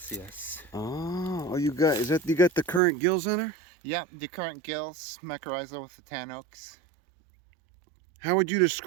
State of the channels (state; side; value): drops out; left; at 2.8 s